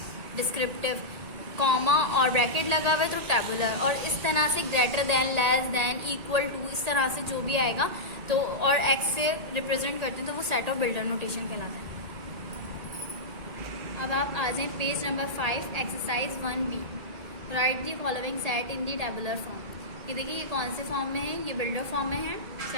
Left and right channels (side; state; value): left; late; 1.8 ms